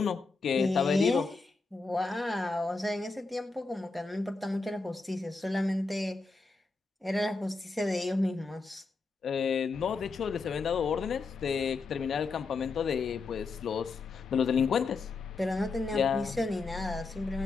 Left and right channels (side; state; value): right; quieter; 4.0 dB